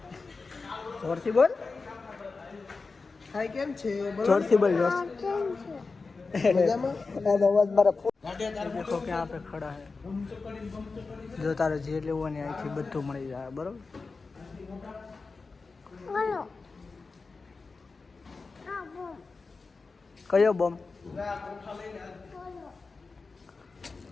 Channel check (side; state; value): right; quieter; 4.2 dB